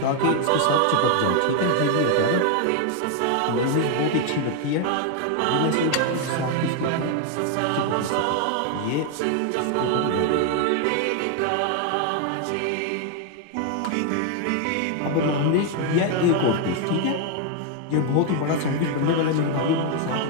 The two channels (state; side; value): different; both; correlation 0.00